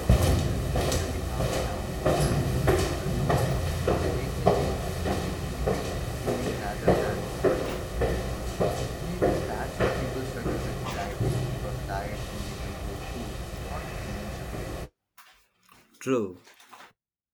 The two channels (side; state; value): both; identical; correlation 1.00